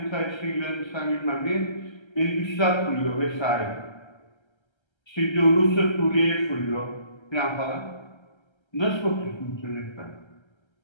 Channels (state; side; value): late; right; 1.3 ms